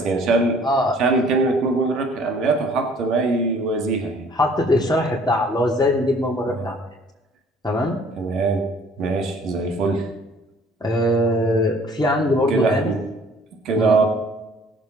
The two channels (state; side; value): normal; both; correlation 0.55